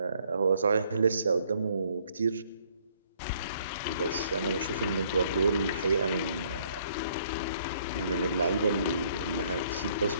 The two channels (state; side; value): inverted; both; correlation -0.65